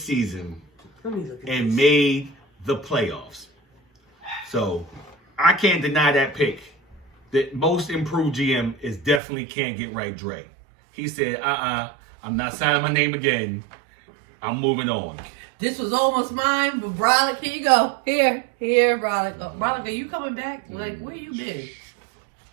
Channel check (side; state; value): left; drops out; at 9.2 s